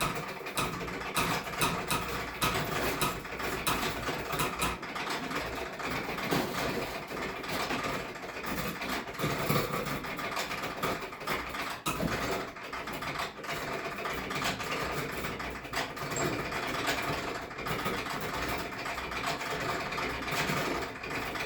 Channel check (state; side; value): identical; both; correlation 1.00